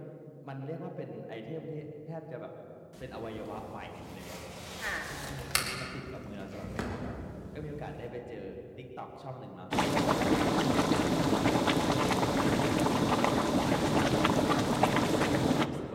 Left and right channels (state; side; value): identical; both; correlation 1.00